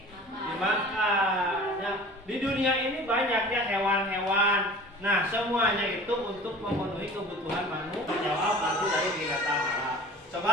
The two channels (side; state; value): both; normal; correlation 0.42